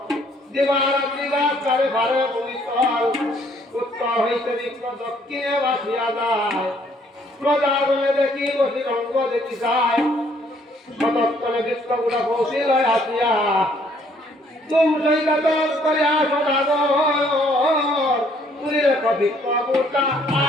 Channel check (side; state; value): both; normal; correlation 0.64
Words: দিবারাত্রি গাছারে ভারে ভূমিতল উত্তর হইতে বৃক্ষ দক্ষিণে বাসিয়া যায় প্রজাগণে দেখি বসি রঙ্গ দেখি যায় সতর্কনে বৃক্ষগুলা পৌঁছিল আসিয়া তুম সৈকত করে আসো দাগর তুলি রেখ বৃক্ষ বুটা